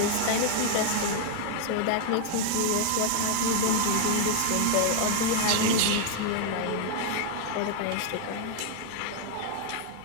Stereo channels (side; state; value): both; different; correlation 0.00